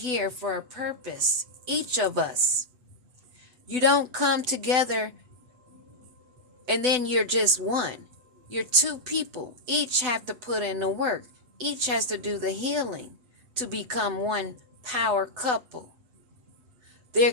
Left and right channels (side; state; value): left; late; 8.0 ms